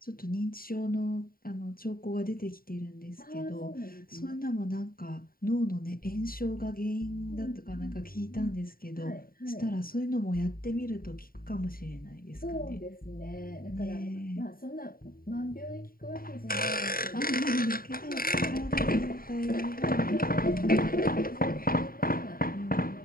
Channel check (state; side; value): late; right; 0.42 ms